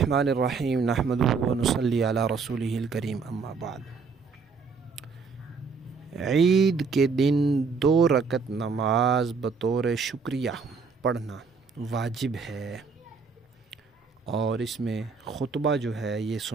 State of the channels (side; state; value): left; quieter; 5.1 dB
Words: الرحیم، نحمدہ و نصلی علی رسولہ الکریم، اما بعد۔ عید کے دن 2 رکعت نماز بطور شکریہ پڑھنا واجب ہے، اور اس میں خطبہ جو ہے یہ